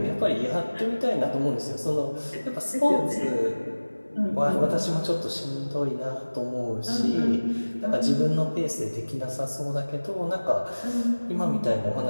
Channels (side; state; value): both; inverted; correlation -1.00